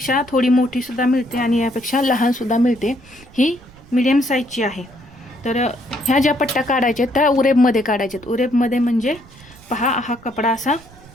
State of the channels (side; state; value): right; noise; rumble, 23 dB below the sound